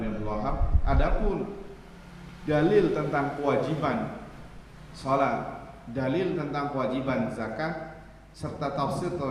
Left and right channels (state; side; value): identical; both; correlation 1.00